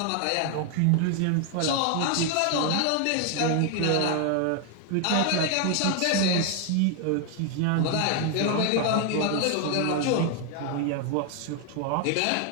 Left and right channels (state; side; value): different; both; correlation 0.00